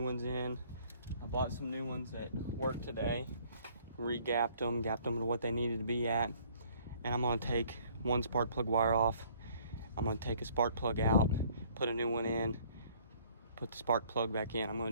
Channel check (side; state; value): both; inverted; correlation -0.59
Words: ones in. I bought some new ones at work today, gapped them to what they needed to be at. And I'm gonna take one spark plug wire off. I'm gonna take a spark plug out, put a new one in, put the spark plug back in. I'm